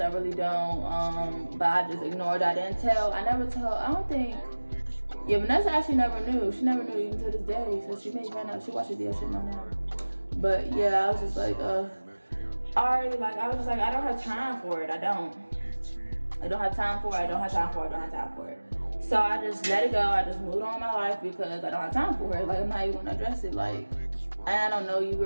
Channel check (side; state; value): both; inverted; correlation -1.00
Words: really don't. But I just ignored it. I don't think, Vanessa actually never knew. She never knew even to this day. So she may find out, she watches video, she know now. But yeah, I was just like, I was just like, I don't have time for it, I don't have time for it. So I just let it go, I just moved on with my life because I don't have time for it. Like, I'm not even gonna address it. Like, I don't know you,